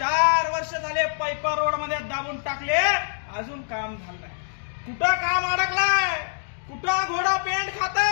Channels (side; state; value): right; silent; digital silence